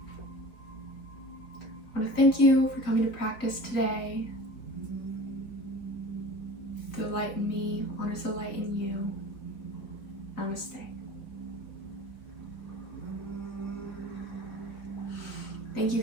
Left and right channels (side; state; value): right; late; 3.9 ms